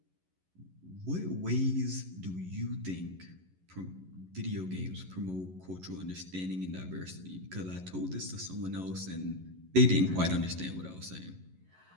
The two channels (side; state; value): left; late; 11 ms